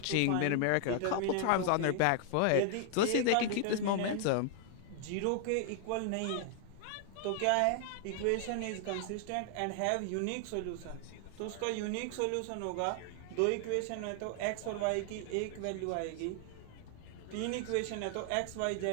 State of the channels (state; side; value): different; both; correlation 0.00